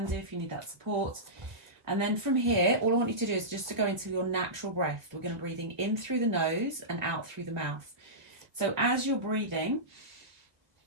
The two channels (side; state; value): left; late; 1.4 ms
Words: do if you need that support. And then from here, all I want you to do is just to go into your natural breath. We're going to breathing in through the nose and out through the mouth. So as you're breathing,